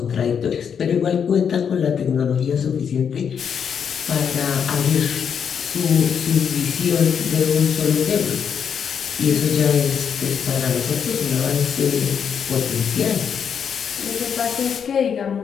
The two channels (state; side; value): quieter; right; 7.4 dB